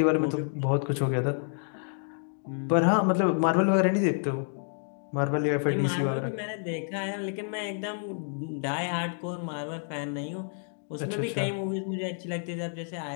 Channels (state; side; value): silent; right; 59 dB below the other